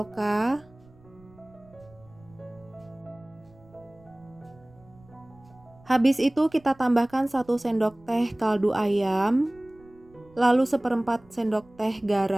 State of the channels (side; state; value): right; noise; rumble, 27 dB below the sound